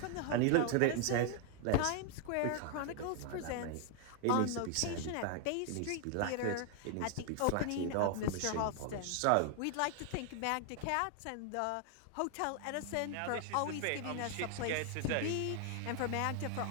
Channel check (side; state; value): both; different; correlation 0.00